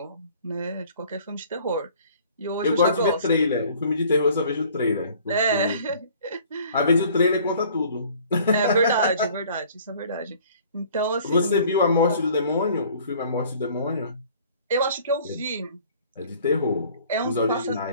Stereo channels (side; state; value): both; inverted; correlation -0.53